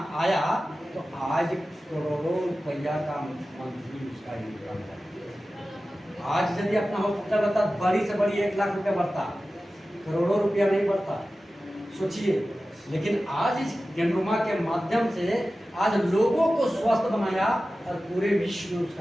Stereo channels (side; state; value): both; normal; correlation 0.95